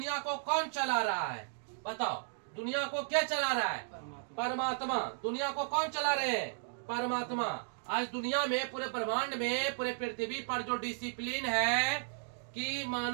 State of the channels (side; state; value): left; silent; digital silence